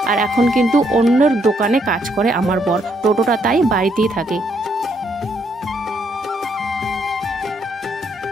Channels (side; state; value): both; normal; correlation 0.73